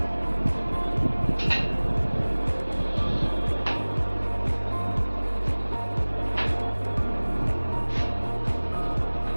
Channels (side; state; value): both; inverted; correlation -1.00